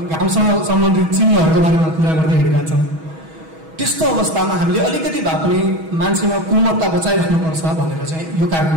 घामसँग सम्बन्धित चिन्हहरूको बारेमा कुरा गर्दै हिँडिरहेका छौँ। त्यस्तो अवस्थामा हामीले अलिकति भए पनि मान्छेमा कोमलता बचाइराख्नुपर्छ भनेर चाहिँ यो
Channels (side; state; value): left; late; 6.2 ms